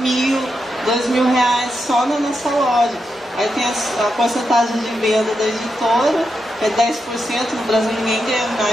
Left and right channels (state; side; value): normal; both; correlation 0.85